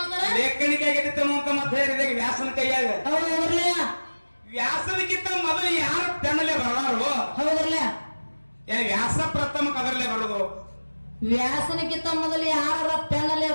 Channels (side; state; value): both; inverted; correlation -1.00